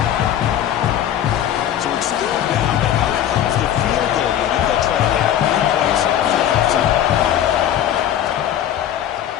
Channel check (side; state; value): right; quieter; 10.8 dB